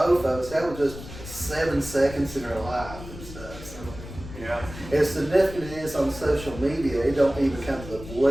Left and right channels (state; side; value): noise; left; rumble, 13 dB below the sound